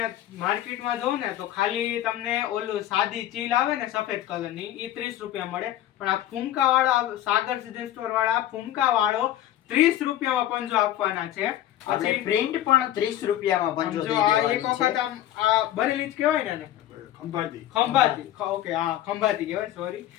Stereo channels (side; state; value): right; quieter; 12.8 dB